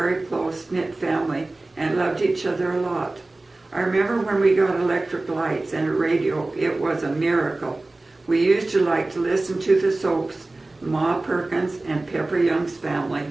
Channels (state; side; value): quieter; left; 3.0 dB